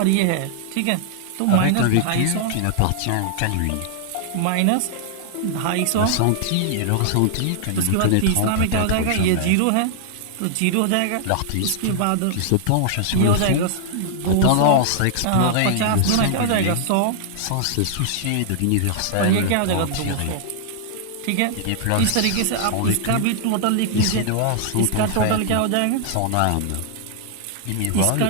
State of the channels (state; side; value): different; both; correlation -0.01